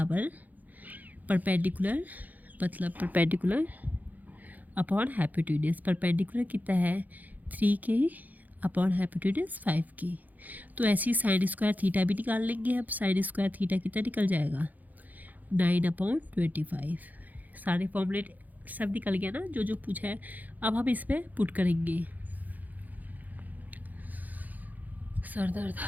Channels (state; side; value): late; left; 0.081 ms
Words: परपेंडिकुलर मतलब परपेंडिकुलर अपॉन हाइपोटेन्यूज। परपेंडिकुलर कितना है 3k अपॉन हाइपोटेन्यूज 5k, तो ऐसे ही साइन स्क्वायर थीटा भी निकाल लेंगे। अब साइन स्क्वायर थीटा कितना निकल जाएगा 9/25। सारे फॉर्मूले सब निकल गया ना जो जो पूछा है। अब हम इसमें पुट करेंगे। सर दर्द